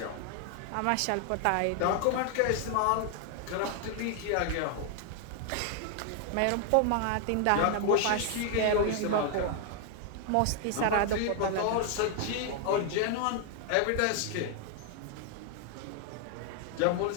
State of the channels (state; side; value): different; both; correlation 0.00